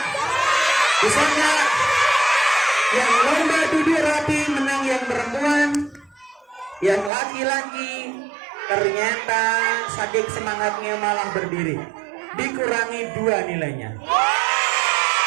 Bisa enggak? Yang lomba duduk rapi menang yang perempuan. Yang laki-laki ternyata saking semangatnya malah berdiri. Dikurangi 2 nilainya.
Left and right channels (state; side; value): drops out; left; at 7.1 s